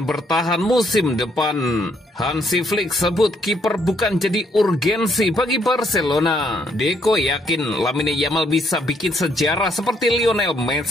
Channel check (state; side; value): normal; both; correlation 0.70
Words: bertahan musim depan. Hansi Flick sebut kiper bukan jadi urgensi bagi Barcelona. Deco yakin Lamine Yamal bisa bikin sejarah seperti Lionel